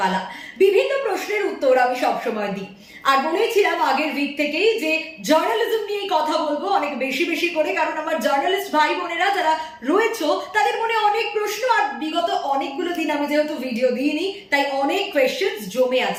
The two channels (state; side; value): identical; both; correlation 1.00